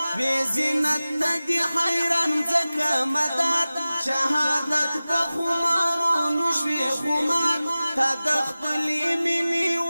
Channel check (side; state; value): both; inverted; correlation -0.97